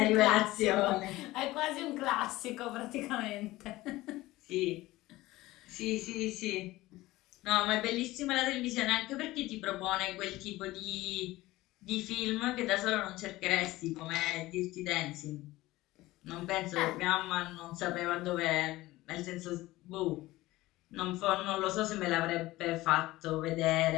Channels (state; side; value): quieter; right; 18.2 dB